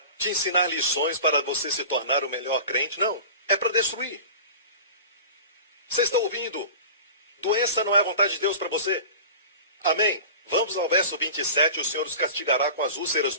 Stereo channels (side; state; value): both; inverted; correlation -0.36